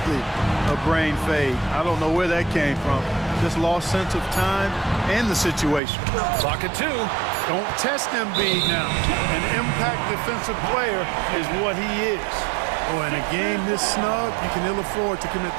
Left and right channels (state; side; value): drops out; left; at 5.8 s